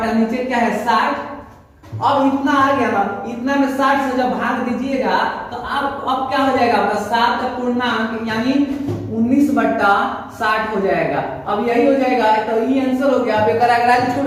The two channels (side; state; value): both; identical; correlation 1.00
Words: नीचे क्या है 60। अब इतना आ गया ना, इतना में 60 से जब भाग दीजिएगा तो अब क्या हो जाएगा आपका 7 पूर्णांक यानी 19/60 हो जाएगा। अब यही हो जाएगा, तो ये आंसर हो गया। अब एक अगराज छूट